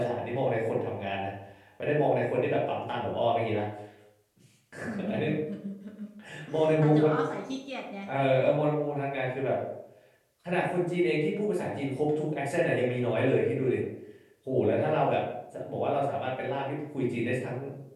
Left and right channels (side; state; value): both; identical; correlation 1.00